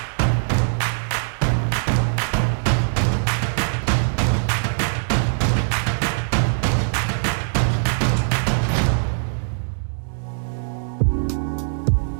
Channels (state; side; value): silent; left; digital silence